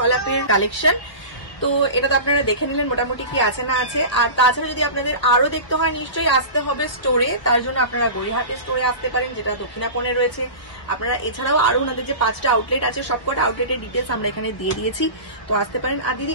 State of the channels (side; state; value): right; late; 1.2 ms